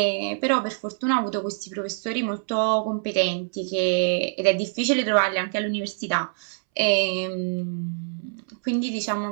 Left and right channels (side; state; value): left; silent; 62 dB below the other